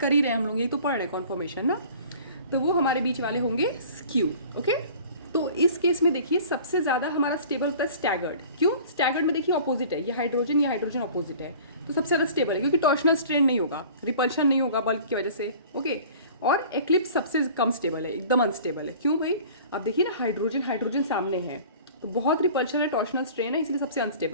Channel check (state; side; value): inverted; both; correlation -0.45